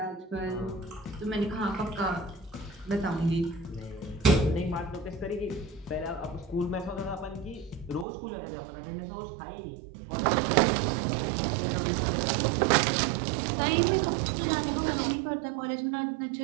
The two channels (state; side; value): drops out; left; at 8.1 s